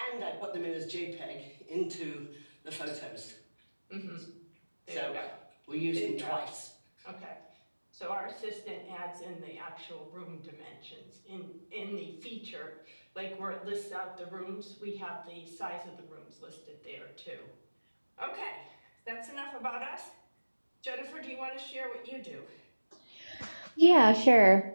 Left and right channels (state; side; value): inverted; both; correlation -1.00